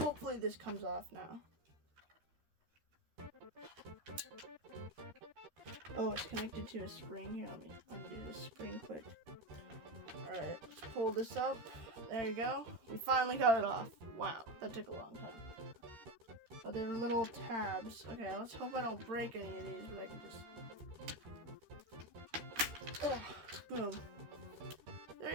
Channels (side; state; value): left; late; 13 ms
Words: this comes off now. Oh, it's connected to a spring here. Let me undo this spring quick. Alright, let's pull this up. There you go. We finally got it off. Wow, that took a long time. Oh, there are little tabs. Okay, let's hope I don't break any of these, but I can just... boom. There